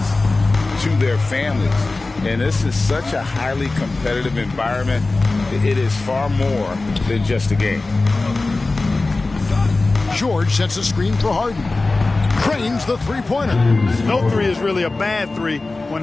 to their families. And this is such a highly competitive environment. It is far more than just a game. George sets a screen for Harden. Cranes the three-pointer. No three is really a bad three when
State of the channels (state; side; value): quieter; right; 3.3 dB